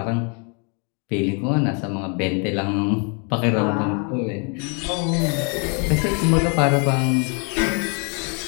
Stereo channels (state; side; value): quieter; right; 36.4 dB